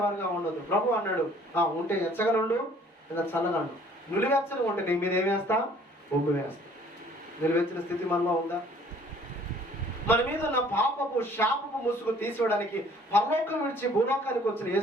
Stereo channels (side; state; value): both; normal; correlation 0.56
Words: ఉండొద్దు. ప్రభు అన్నాడు, ఉంటే ఎచ్చగా ఉండు, లేదా చల్లగా ఉండు. నిలువెచ్చగా ఉంటే నీ మీద ఏం వేస్తా? ఉమ్ము వేస్తా. నిలువెచ్చిన స్థితి మనలో ఉందా? మన మీద ఉన్న పాపపు శాపపు ముసుగు తీసివేయడానికి పరలోకం విడిచి భూలోకానికి వచ్చిన